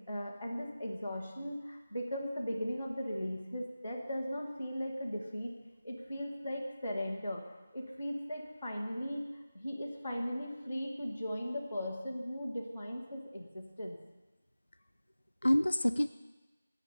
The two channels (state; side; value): inverted; both; correlation -0.95